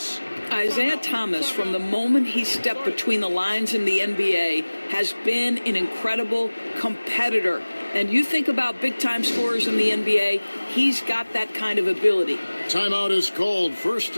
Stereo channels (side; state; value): both; inverted; correlation -1.00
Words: Isaiah Thomas, from the moment he stepped between the lines in the NBA, has been an incredible competitor. And you think about big-time scorers in the NBA, he's got that kind of ability. Timeout is called. First